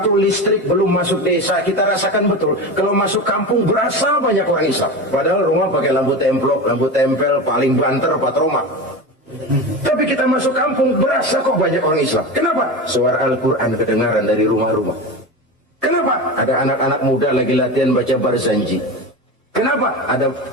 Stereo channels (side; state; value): both; normal; correlation 0.24